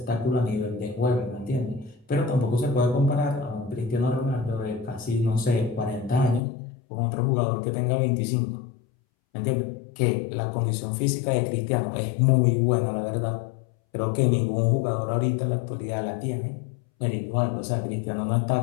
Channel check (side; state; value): right; drops out; at 6.4 s